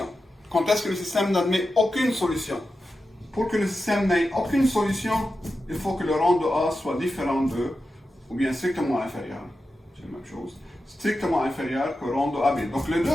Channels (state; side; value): normal; both; correlation 0.91